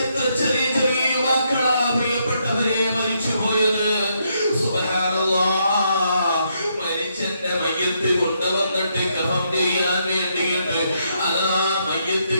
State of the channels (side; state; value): both; inverted; correlation -0.76